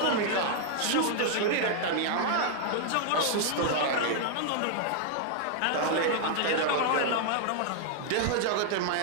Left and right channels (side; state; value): both; different; correlation 0.00